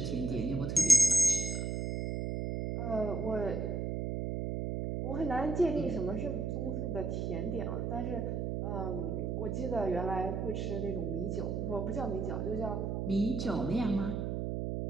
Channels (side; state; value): right; noise; hum, 1 dB below the sound